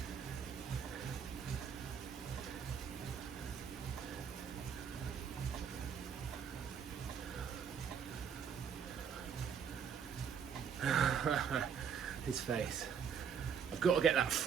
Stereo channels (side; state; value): left; quieter; 7.3 dB